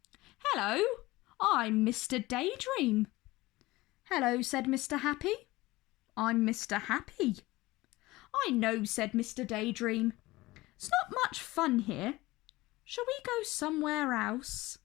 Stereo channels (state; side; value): quieter; right; 19.6 dB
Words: "Hello, I'm Mr. Daydream." "Hello," said Mr. Happy. "I'm Mr. Happy." "I know," said Mr. Daydream. "It's not much fun here. Shall we go somewhere else?"